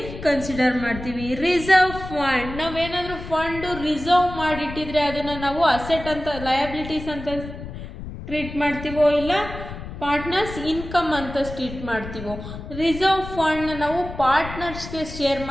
ಕನ್ಸಿಡರ್ ಮಾಡ್ತೀವಿ. ರಿಸರ್ವ್ ಫಂಡ್, ನಾವೇನಾದರೂ ಫಂಡು ರಿಸರ್ವ್ ಮಾಡಿಟ್ಟಿದ್ರೆ ಅದನ್ನು ನಾವು ಅಸೆಟ್ ಅಂತ, ಲಯಬಿಲಿಟೀಸ್ ಅಂತ ಟ್ರೀಟ್ ಮಾಡ್ತೀವೋ ಇಲ್ಲ ಪಾರ್ಟ್ನರ್ಸ್ ಇನ್ಕಮ್ ಅಂತ ಟ್ರೀಟ್ ಮಾಡ್ತೀವೋ. ರಿಸರ್ವ್ ಫಂಡ್ನ ನಾವು ಪಾರ್ಟ್ನರ್ಸ್ಗೆ ಶೇರ್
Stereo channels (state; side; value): noise; left; rumble, 11 dB below the sound